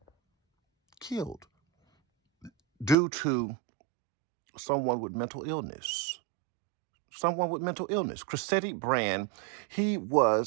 killed due to someone with mental illness. Someone with mental illness. Cressetti Brand, he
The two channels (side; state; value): left; drops out; at 3.0 s